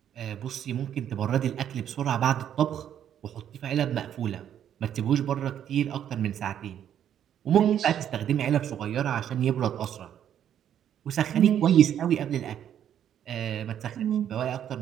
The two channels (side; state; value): left; quieter; 9.9 dB